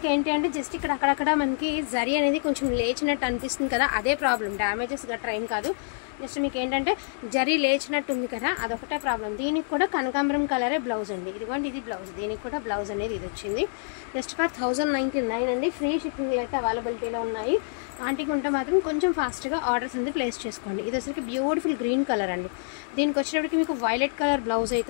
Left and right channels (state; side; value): silent; right; digital silence